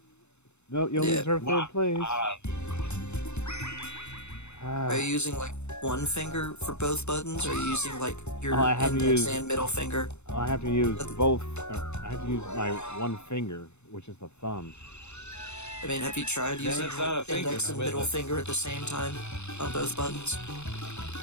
no, you only deserve 3rd place. Are you using like one finger for both buttons, or are you using like your and middle finger? I have to use both. I have to use my one finger, which is the thumb. I mean, have you tried using index and middle finger at the same time on both buttons?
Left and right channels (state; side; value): late; right; 0.82 ms